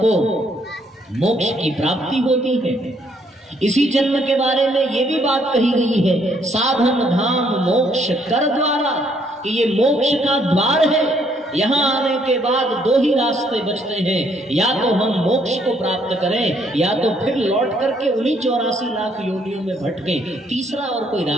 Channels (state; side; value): normal; both; correlation 0.68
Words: मोक्ष की प्राप्ति होती है। इसी जन्म के बारे में ये भी बात कही गई है, साधन धाम मोक्ष कर द्वारा, कि ये मोक्ष का द्वार है। यहाँ आने के बाद दो ही रास्ते बचते हैं, या तो हम मोक्ष को प्राप्त करें या तो फिर लौट करके उन्हीं 84 लाख योनियों में भटकें। तीसरा और कोई